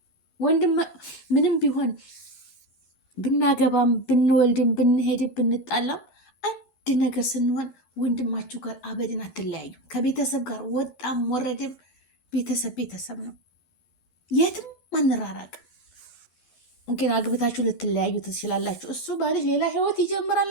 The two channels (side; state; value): right; late; 11 ms